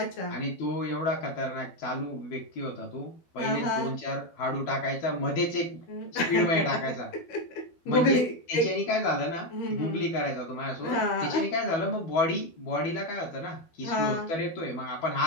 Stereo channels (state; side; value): late; right; 12 ms